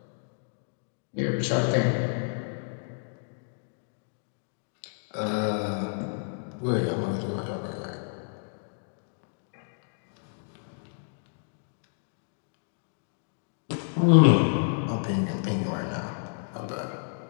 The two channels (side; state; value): right; silent; digital silence